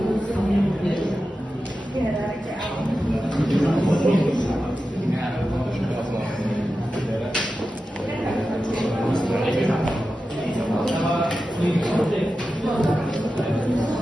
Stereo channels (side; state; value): both; normal; correlation 0.92